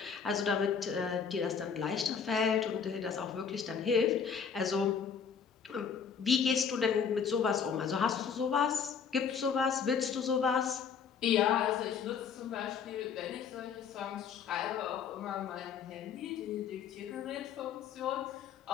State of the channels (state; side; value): quieter; right; 6.7 dB